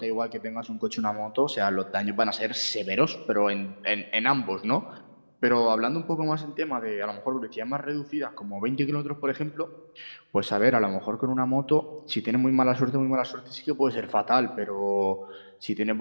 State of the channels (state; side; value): inverted; both; correlation -1.00